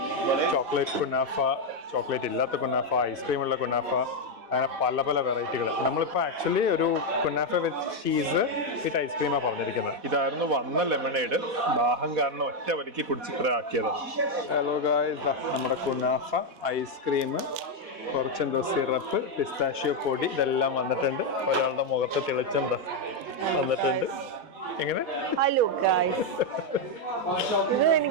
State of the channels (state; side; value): late; left; 4.1 ms